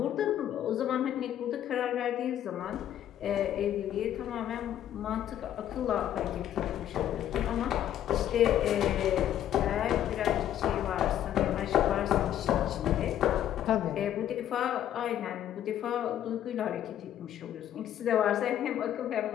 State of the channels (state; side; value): quieter; right; 11.1 dB